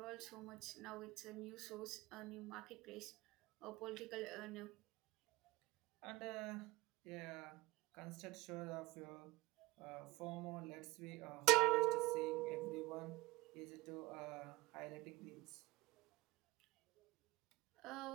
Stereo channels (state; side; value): quieter; left; 21.2 dB